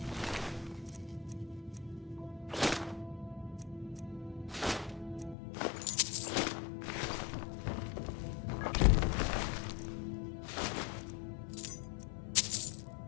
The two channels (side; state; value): right; drops out; at 5.4 s